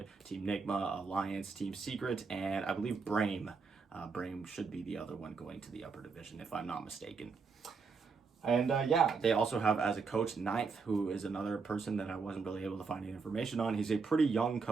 Team Nigma, Alliance, Team Secret, and I believe Brame. Brame should be the other one going to the upper division, if I'm not mistaken. And yeah, they also have as a coach Ninth, who is another person that I wasn't really able to find any information on. He's a pretty young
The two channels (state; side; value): quieter; left; 5.0 dB